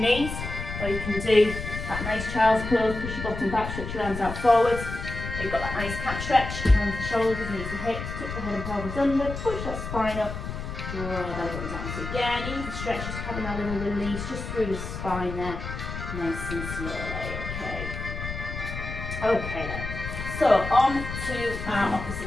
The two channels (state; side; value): noise; left; rumble, 7 dB below the sound